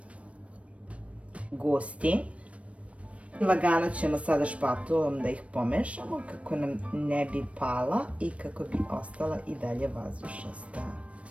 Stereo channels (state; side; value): late; left; 0.063 ms